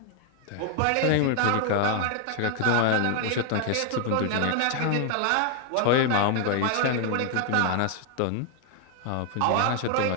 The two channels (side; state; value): both; different; correlation 0.00